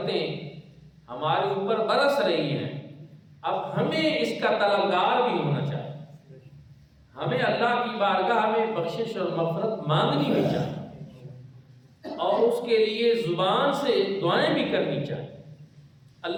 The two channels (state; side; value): identical; both; correlation 1.00